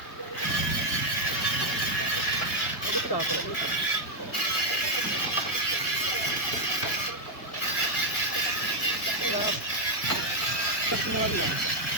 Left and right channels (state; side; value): late; right; 1.9 ms